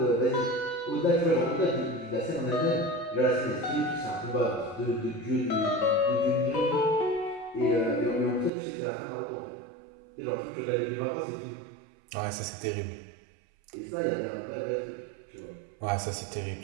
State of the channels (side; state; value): left; drops out; at 8.5 s